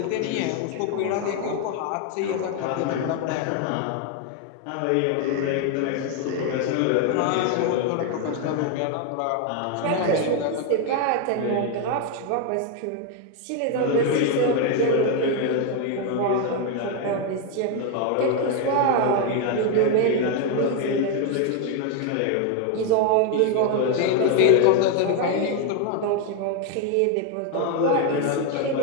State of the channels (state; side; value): different; both; correlation 0.01